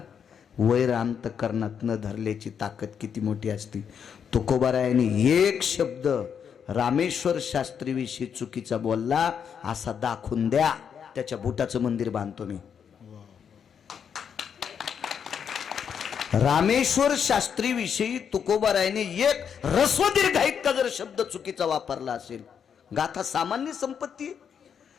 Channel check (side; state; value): right; quieter; 7.5 dB